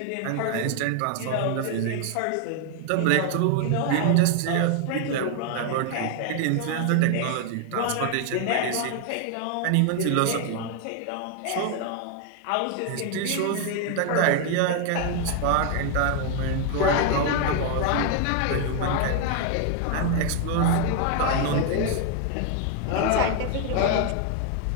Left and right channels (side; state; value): both; different; correlation 0.00